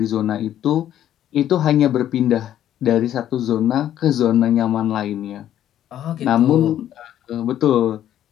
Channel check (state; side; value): quieter; right; 11.4 dB